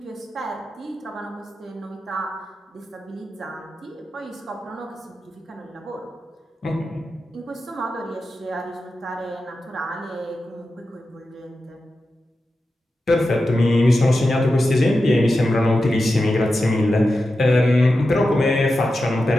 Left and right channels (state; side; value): normal; both; correlation 0.91